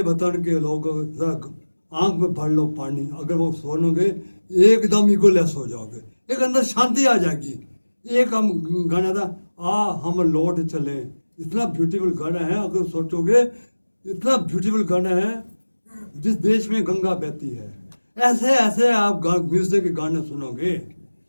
वतन के लोगों, आंख में भर लो पानी। अगर वो सुनोगे एकदम इगोलेस हो जाओगे, एक अंदर शांति आ जाएगी। एक हम गाना था, हम लौट चले, इतना ब्यूटीफुल गाना है। अगर सोचोगे इतना ब्यूटीफुल गाना है, जिस देश में गंगा बहती है। ऐसे ऐसे आप म्यूजिक के गाने सुनोगे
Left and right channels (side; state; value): both; inverted; correlation -1.00